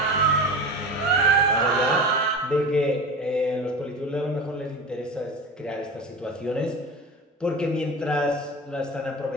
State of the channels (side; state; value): both; normal; correlation 0.30